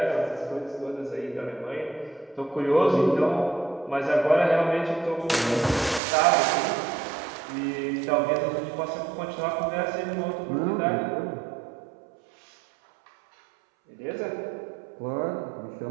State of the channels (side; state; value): left; drops out; at 6.0 s